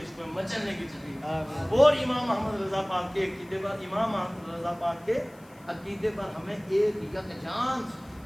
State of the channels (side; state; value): left; noise; hiss, 28 dB below the sound